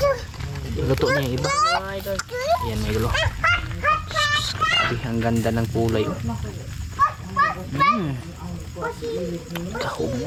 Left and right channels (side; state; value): both; identical; correlation 1.00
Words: Luto niya yung iba. Yan mga idol. Sabi, ang ganda ng kulay.